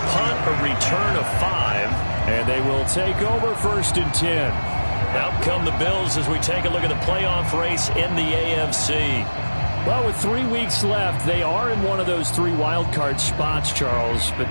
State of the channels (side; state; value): both; inverted; correlation -1.00